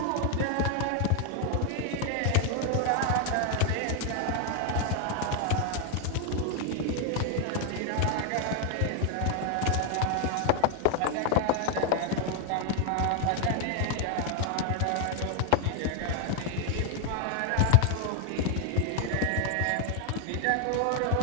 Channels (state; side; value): different; both; correlation 0.00